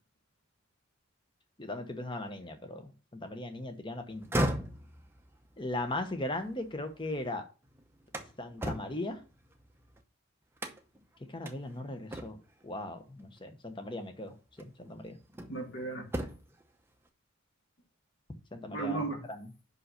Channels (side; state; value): both; normal; correlation 0.51